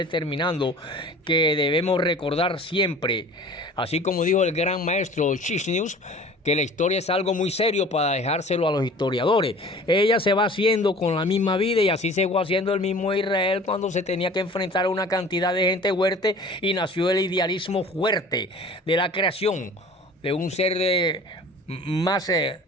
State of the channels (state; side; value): normal; both; correlation 0.44